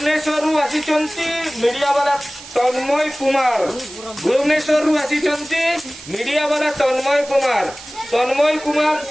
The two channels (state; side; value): noise; right; hiss, 16 dB below the sound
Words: media वाला तन्मय Kumar Bhubaneswar आसिचंती media वाला तन्मय कुमार